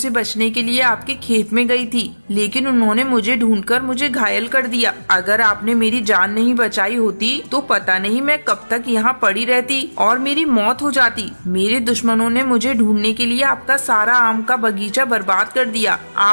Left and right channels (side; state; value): both; inverted; correlation -1.00